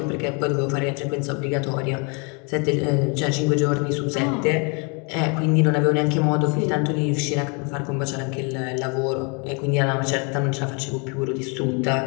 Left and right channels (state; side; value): quieter; right; 33.7 dB